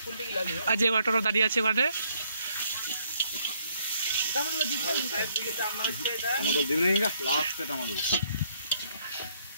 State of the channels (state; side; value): inverted; both; correlation -0.68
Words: আর যে অটোটা দাঁড়িয়ে আছে ওখানে